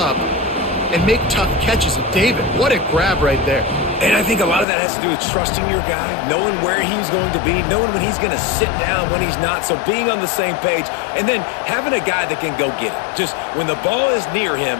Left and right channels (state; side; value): drops out; right; at 4.7 s